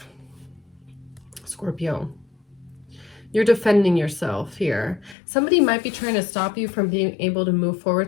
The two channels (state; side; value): drops out; right; at 5.2 s